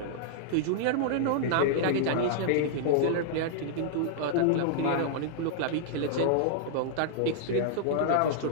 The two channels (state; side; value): different; both; correlation -0.01